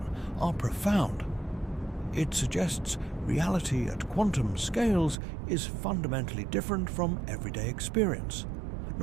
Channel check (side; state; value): left; drops out; at 5.2 s